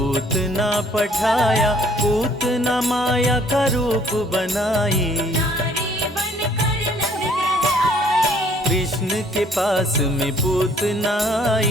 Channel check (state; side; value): normal; both; correlation 0.60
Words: पठाया। पूतना माया का रूप बनाई, कृष्ण के पास में पूतना